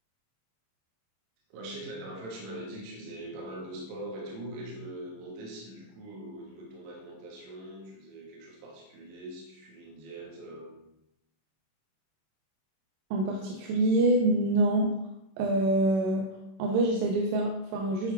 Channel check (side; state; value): left; late; 26 ms